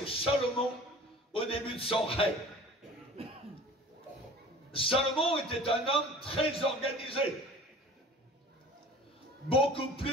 Salomon au début de son règne. Salomon était un homme très organisé, beaucoup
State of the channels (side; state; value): both; normal; correlation 0.44